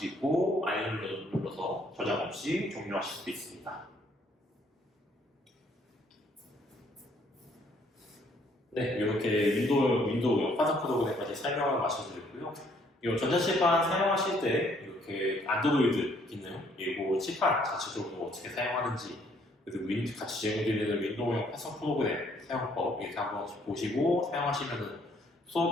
있고 아니면 눌러서 저장 없이 종료하실 수도 있습니다. 네, 이렇게 윈도우 판사 프로그램까지 설명을 마쳐드렸고요. 이 전자칠판 사용하실 때 이렇게 안드로이드 기능 그리고 칠판 자체적으로 어떻게 사용하는지 그리고 같이 제공드리는 윈도우용 판사 프로그램 사용법 이렇게 한번 보시고 사용하시면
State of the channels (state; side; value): normal; both; correlation 0.65